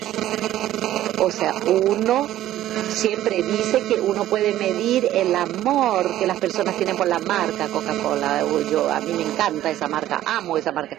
O sea, uno siempre dice que uno puede medir el amor que las personas tienen por la marca Coca-Cola. A mí me encanta esa marca, amo esa marca.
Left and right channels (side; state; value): left; quieter; 13.4 dB